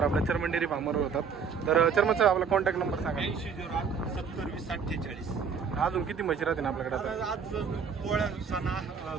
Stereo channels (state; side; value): quieter; left; 6.2 dB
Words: आपल्या चर्मन डेअरी फार्मवर होतात। तर चर्मन साहेब आपला कॉन्टॅक्ट नंबर सांगा। 8008 70 20 48। अजून किती म्हशी राहतील आपल्याकडे आता? आज पोळ्या